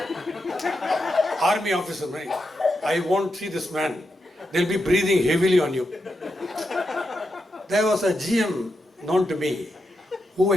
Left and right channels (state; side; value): normal; both; correlation 0.86